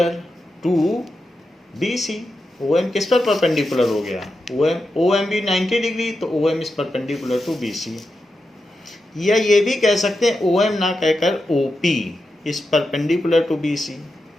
to B C. O M किस पर परपेंडिकुलर हो गया, ओ एम बी 90 डिग्री, तो O M is perpendicular to B C. या ये भी कह सकते हैं ओ एम ना कहकर O P is perpendicular to B C,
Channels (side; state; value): both; normal; correlation 0.89